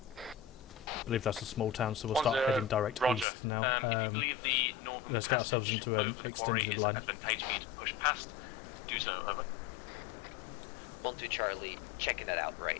believe that's a small town, so we'll start 10, heading direct Roger. east now. If you believe the northern let's get ourselves passage into an over the quarry extended is line. advantageous for you to push past, do so, over. 1-2 Charlie, checking that out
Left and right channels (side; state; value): right; drops out; at 3.2 s